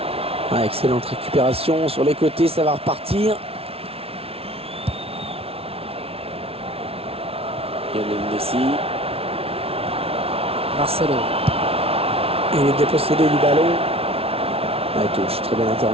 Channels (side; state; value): left; late; 0.28 ms